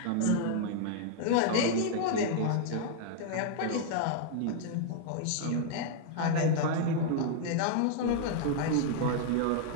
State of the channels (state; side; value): different; both; correlation -0.01